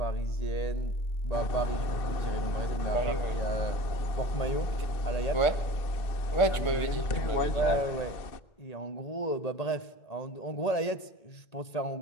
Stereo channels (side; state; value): right; late; 1.8 ms